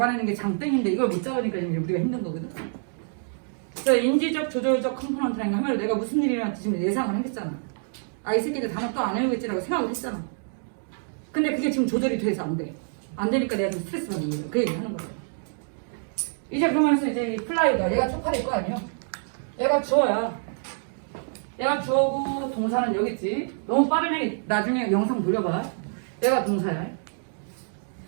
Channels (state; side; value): silent; left; digital silence